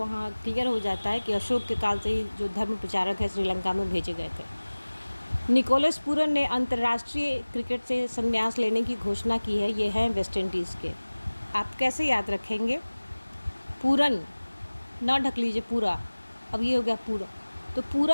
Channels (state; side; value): inverted; both; correlation -1.00